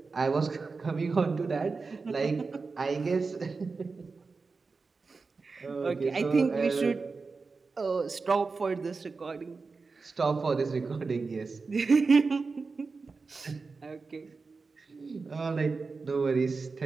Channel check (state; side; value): quieter; left; 4.3 dB